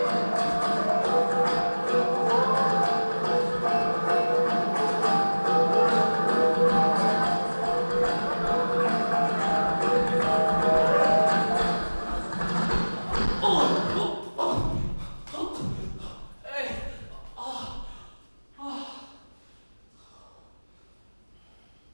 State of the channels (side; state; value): both; inverted; correlation -1.00